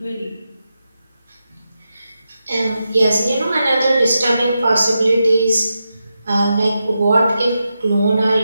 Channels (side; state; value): both; inverted; correlation -0.88